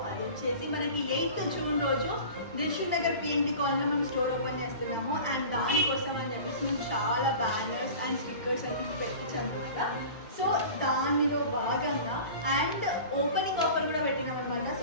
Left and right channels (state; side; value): inverted; both; correlation -0.38